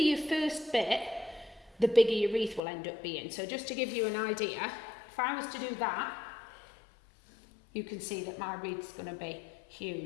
first bit, the bigger your wreath will end up being. So just to give you an idea, if I was to do that, you can see that my wreath's going to be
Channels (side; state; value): right; drops out; at 2.6 s